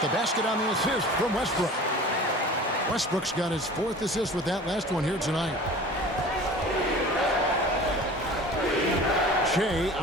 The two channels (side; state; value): both; normal; correlation 0.41